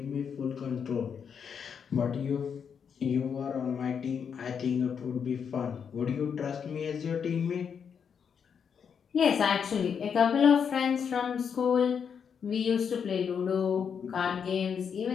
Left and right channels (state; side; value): quieter; right; 7.0 dB